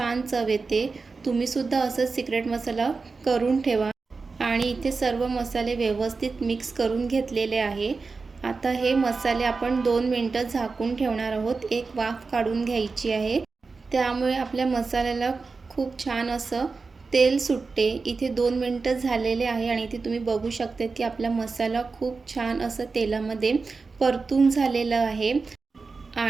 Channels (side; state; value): left; quieter; 4.3 dB